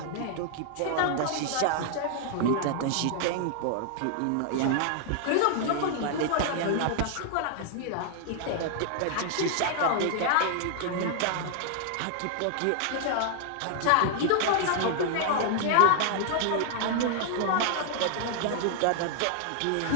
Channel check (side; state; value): both; different; correlation 0.00